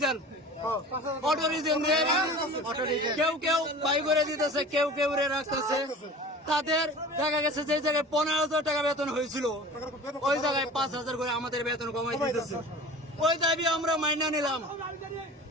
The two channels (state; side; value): normal; both; correlation 0.39